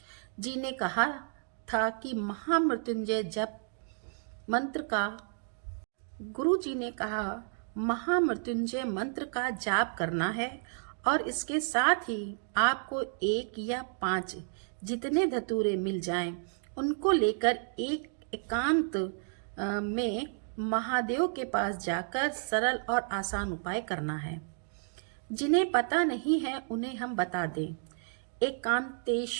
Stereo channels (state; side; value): silent; left; 57 dB below the other